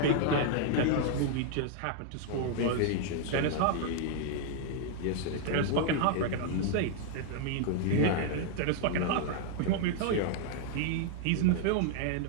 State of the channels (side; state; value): both; different; correlation 0.00